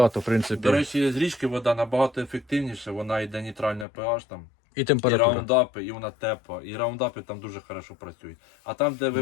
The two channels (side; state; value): right; drops out; at 3.9 s